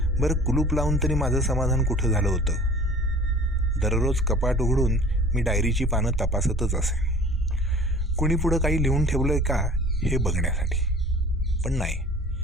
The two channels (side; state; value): both; normal; correlation 0.46